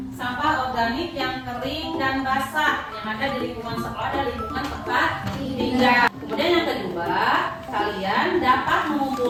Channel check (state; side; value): identical; both; correlation 1.00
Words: sampah organik yang kering dan basah yang ada di lingkungan sekolah dan lingkungan tempat tinggal. Kemudian yang kedua, kalian dapat